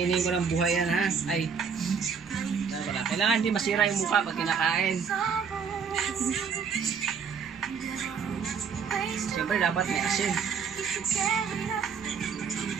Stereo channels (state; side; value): quieter; left; 6.3 dB